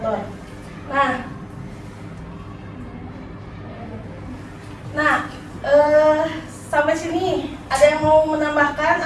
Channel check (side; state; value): both; identical; correlation 1.00